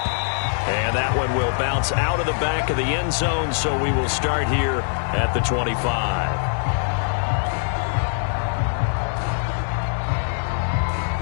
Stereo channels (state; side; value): silent; right; digital silence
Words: And that one will bounce out of the back of the end zone, so we will start here at the 25.